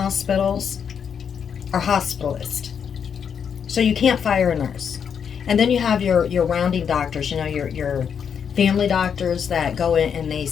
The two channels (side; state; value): right; quieter; 7.3 dB